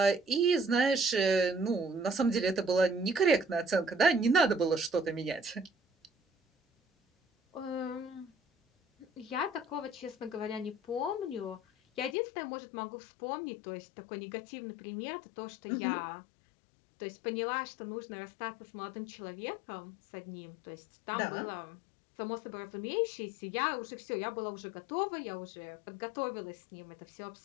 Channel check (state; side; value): drops out; right; at 12.2 s